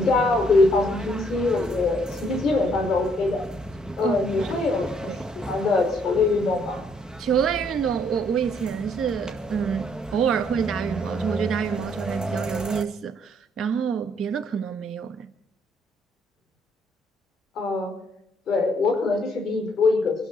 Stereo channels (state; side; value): normal; both; correlation 0.67